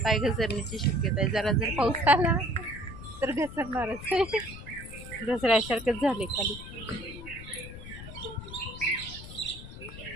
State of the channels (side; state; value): left; noise; rumble, 13 dB below the sound